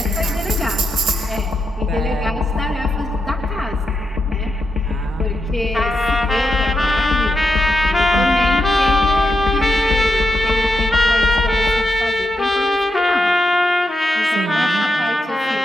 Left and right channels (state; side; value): normal; both; correlation 0.85